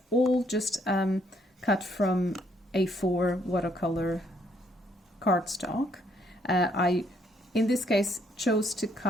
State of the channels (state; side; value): normal; both; correlation 0.69